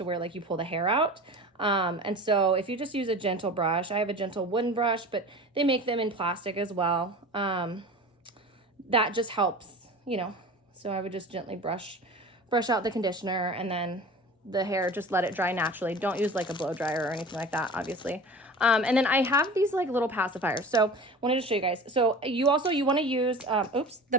where like you pull the hair out. And so if you just use a gentle brush, I have a gentle wooden brush, but they make them in plastic as well. That just helps, you know. So I would just gently brush out the conditioner, and then the hair, just let it dry naturally. Don't use like a blow dryer or anything like that, obviously. And then I have these like little pacifiers. So I wanted to show you guys. So you want to use, the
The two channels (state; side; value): normal; both; correlation 0.36